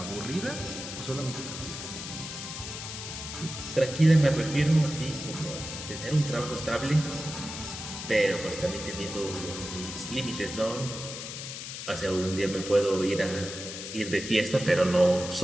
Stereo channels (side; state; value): left; noise; hiss, 8 dB below the sound